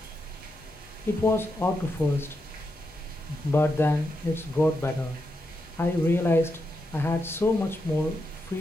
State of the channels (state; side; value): normal; both; correlation 0.85